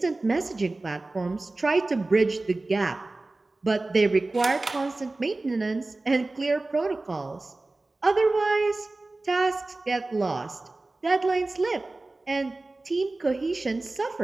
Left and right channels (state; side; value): quieter; left; 3.1 dB